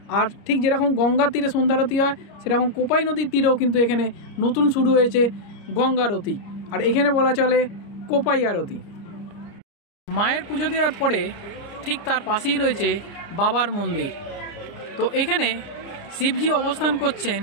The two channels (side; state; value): right; late; 29 ms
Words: আর ঠিক যেরকম গঙ্গার তীরে সন্ধ্যারতি হয়, সেরকম কোপাই নদীর তীরেও কিন্তু এখানে নতুন শুরু হয়েছে গঙ্গারতি, আর এখানে বলা চলে কোপাই আরতি। মায়ের পুজো দেওয়ার পরে ঠিক তার পাশেই রয়েছে বাবার মন্দির। তো এখানে শিবজি অবস্থান করছেন